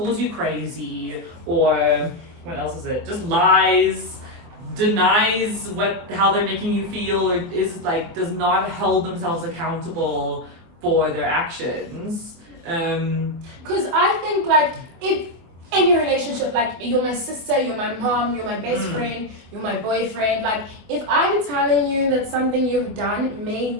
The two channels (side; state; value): left; late; 24 ms